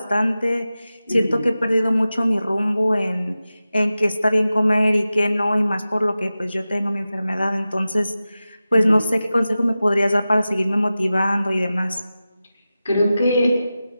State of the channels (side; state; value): both; inverted; correlation -0.94